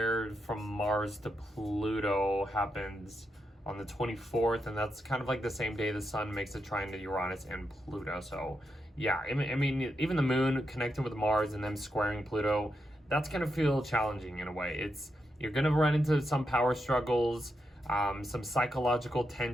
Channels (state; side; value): normal; both; correlation 0.84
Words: from Mars to Pluto happens on the 24th, and that's kind of like the same day the sun makes a trine to Uranus and Pluto. So yeah, I mean, even the moon connecting with Mars and them squaring Pluto, that's gonna feel challenging in a way. You're gonna run into some power struggles, some psychological